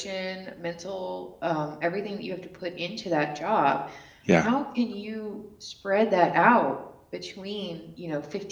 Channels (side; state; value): both; identical; correlation 1.00